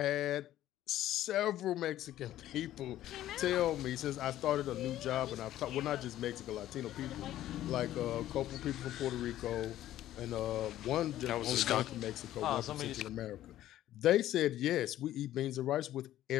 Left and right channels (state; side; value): quieter; right; 13.3 dB